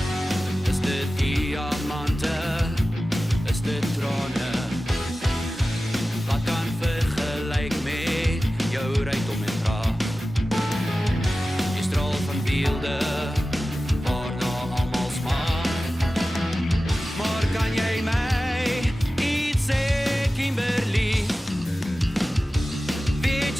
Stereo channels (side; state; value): both; normal; correlation 0.95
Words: Is dit diamante? Is dit trane? Wat kan vergelyk met jou rykdom en praat? Jy straal van beelde waarna almal smaak. Maar kan jy my iets sê, Kimberly? Wie het